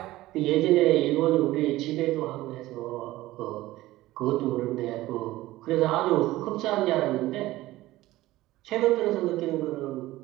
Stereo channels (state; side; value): quieter; left; 17.0 dB